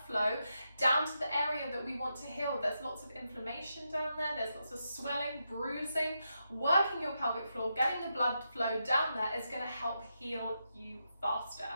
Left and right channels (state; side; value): inverted; both; correlation -0.85